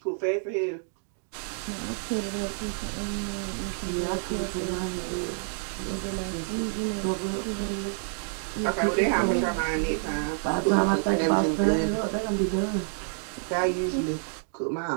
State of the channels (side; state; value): left; silent; digital silence